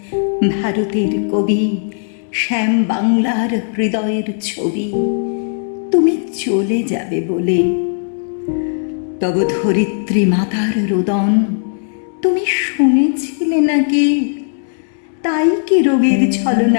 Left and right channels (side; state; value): right; silent; digital silence